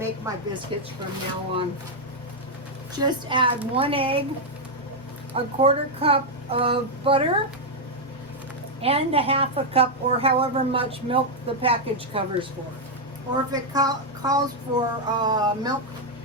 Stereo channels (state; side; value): normal; both; correlation -0.01